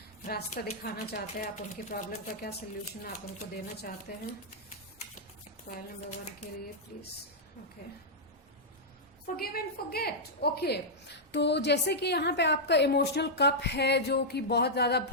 रास्ता दिखाना चाहते हैं आप, उनकी प्रॉब्लम का क्या सोल्यूशन आप उनको देना चाहते हैं पाइल नंबर 1 के लिए, please. Okay, Forgive and forget. Okay, तो जैसे कि यहाँ पे आपका इमोशनल कप है जो कि बहुत ज्यादा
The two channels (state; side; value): normal; both; correlation -0.08